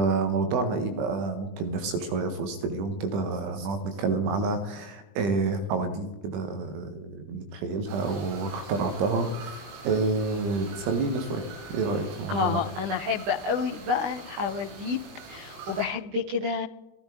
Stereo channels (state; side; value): late; left; 20 ms